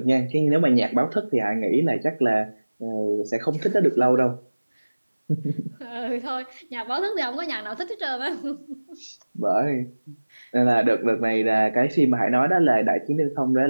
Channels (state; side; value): inverted; both; correlation -1.00